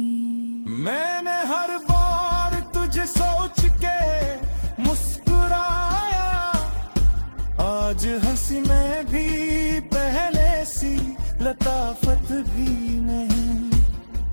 मैंने हर बार तुझे सोच के मुस्कुराया, आज हंसी में भी पहले सी लताफत भी नहीं।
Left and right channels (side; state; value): both; inverted; correlation -1.00